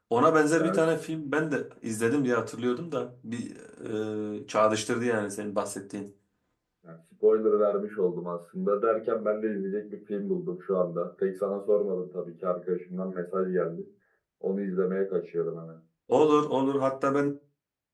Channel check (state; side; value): identical; both; correlation 1.00